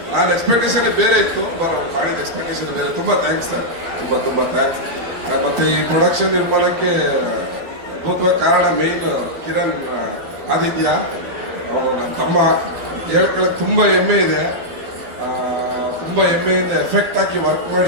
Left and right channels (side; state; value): left; late; 12 ms